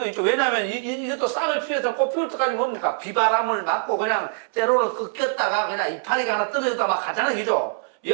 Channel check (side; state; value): left; silent; 63 dB below the other